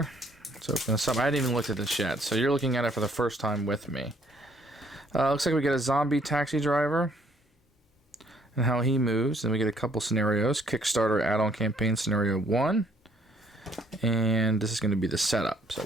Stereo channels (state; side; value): normal; both; correlation 0.64